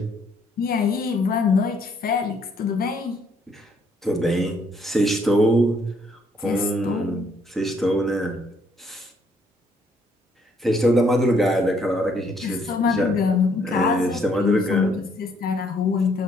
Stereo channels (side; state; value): both; normal; correlation 0.68